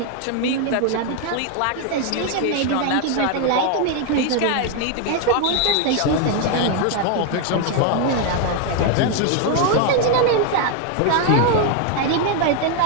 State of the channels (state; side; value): different; both; correlation 0.01